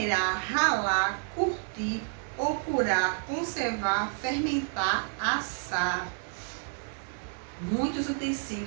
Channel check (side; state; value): left; silent; 58 dB below the other